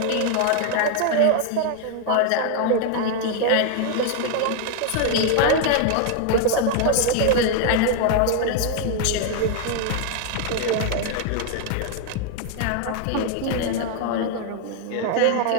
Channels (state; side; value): different; both; correlation 0.00